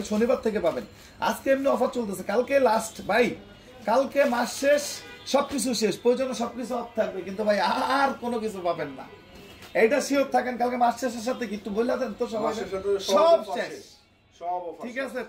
শনিবার থেকে পাবেন। আজকে এমনি অফার চলতেছে, কালকে লাস্ট ভাই, কালকে মাস শেষ, সবকিছু শেষ, প্রয়োজনে সবকিছু অফ থাকবে, কিন্তু ভাই আর কোনো কিছু পাবেন না, এইটা শিওর থাকেন। কালকে মাস শেষের সাথে কি একটু বলে দেন তো, সবাই সব শেষ, ঠিক আছে।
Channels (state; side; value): identical; both; correlation 1.00